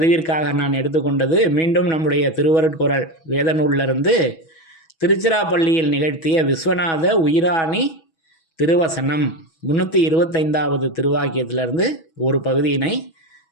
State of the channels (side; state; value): right; late; 6.2 ms